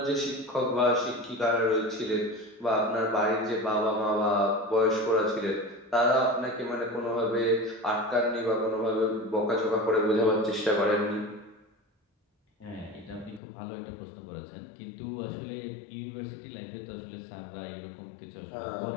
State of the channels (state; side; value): drops out; right; at 13.4 s